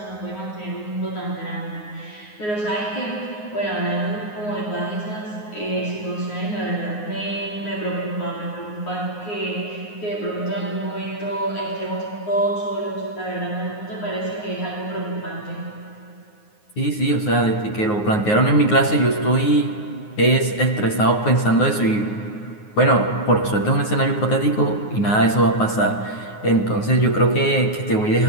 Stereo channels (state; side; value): late; right; 9.5 ms